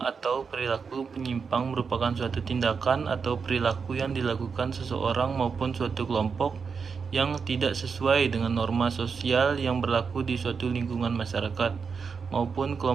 atau perilaku penyimpang merupakan suatu tindakan atau perilaku yang dilakukan seseorang maupun suatu kelompok yang tidak sesuai dengan norma sosial yang berlaku di suatu lingkungan masyarakat maupun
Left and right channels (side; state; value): left; quieter; 5.6 dB